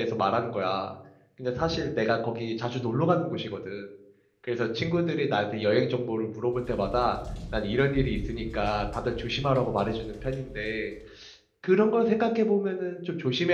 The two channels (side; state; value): both; identical; correlation 1.00